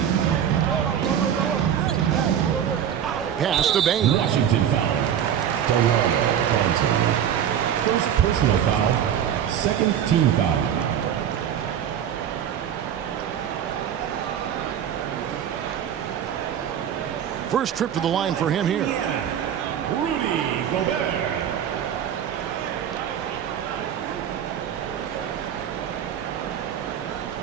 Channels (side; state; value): left; quieter; 9.4 dB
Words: Pass to Bane. Washington foul. First personal foul, second team foul. First trip to the line for him here. Rudy Gobert.